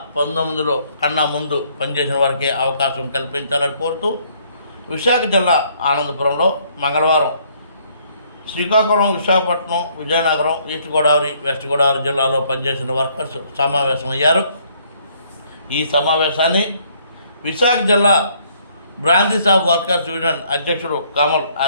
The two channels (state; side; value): inverted; both; correlation -0.65